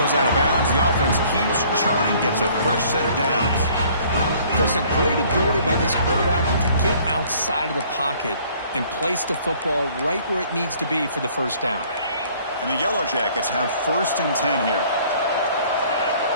out of bounds. The offense keeps churning, gets a fresh set of downs. There's a great ability by this quarterback to get outside of the pocket and place the football right where it needs to be for the first down. And the Yellow Jackets have 1st and 10 here.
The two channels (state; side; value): inverted; both; correlation -0.57